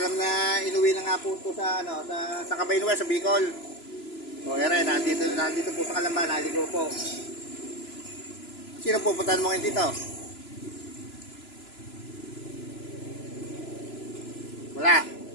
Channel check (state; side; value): late; right; 3.0 ms